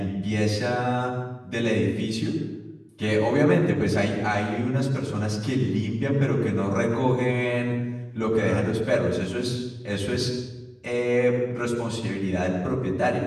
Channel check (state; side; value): identical; both; correlation 1.00